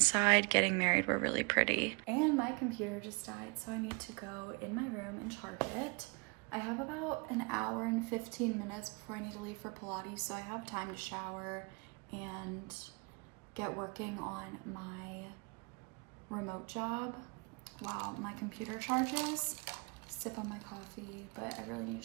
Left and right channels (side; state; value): left; quieter; 31.9 dB